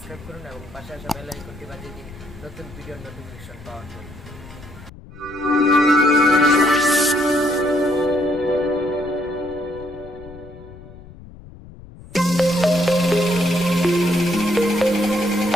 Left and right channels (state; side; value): noise; left; rumble, 18 dB below the sound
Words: করুন এবং পাশে আসা বেল আইকনটি বাজিয়ে দিন নতুন ভিডিওর নোটিফিকেশন পাওয়ার জন্য।